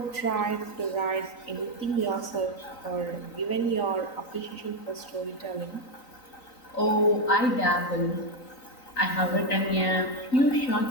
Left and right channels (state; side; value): late; right; 3.9 ms